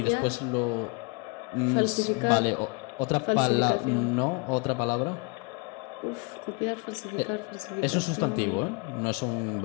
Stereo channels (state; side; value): quieter; right; 31.4 dB